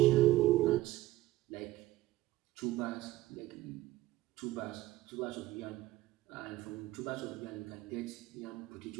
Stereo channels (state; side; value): quieter; left; 16.7 dB